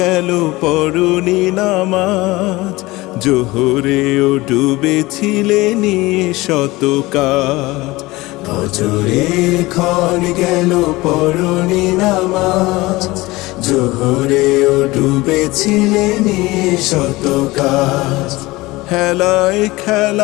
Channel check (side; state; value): right; quieter; 20.5 dB